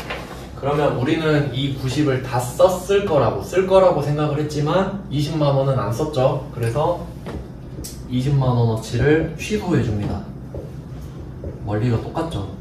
그러면 우리는 이 90을 다 쓸 거라고 생각을 했지만 20만 원은 안 썼죠. 그래서 20만 원어치를 취소해 줍니다. 원리가 똑같죠.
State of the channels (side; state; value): both; identical; correlation 1.00